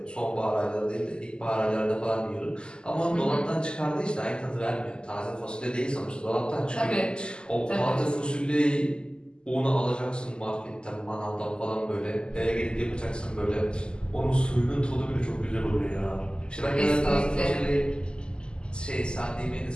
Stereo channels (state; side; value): late; right; 0.048 ms